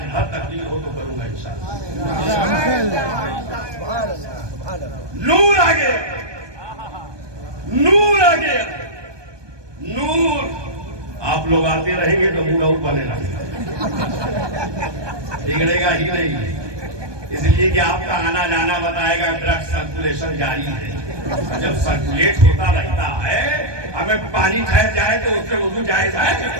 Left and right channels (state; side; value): late; left; 1.2 ms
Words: بھر تقریر ہو تو کروں گا انشاءاللہ۔ نور آ گیا، نور آ گیا، نور۔ آپ لوگ آتے رہیں گے تو منہ اور بنے لگے گا، بگڑے گا ہی نہیں، اس لیے کہ آپ کا آنا جانا بتائے گا، بلڈ سرکولیشن جاری ہے، جب سرکولیٹ ہوتا رہتا ہے، ہمیں پانی ٹھہر جائے تو اس سے وضو جائز ہے